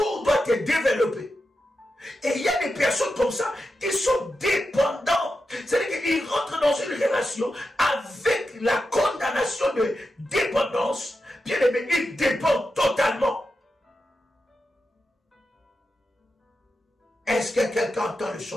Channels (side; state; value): both; normal; correlation 0.89